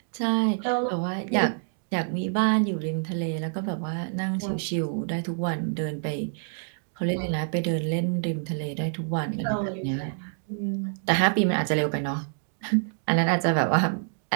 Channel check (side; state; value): left; silent; digital silence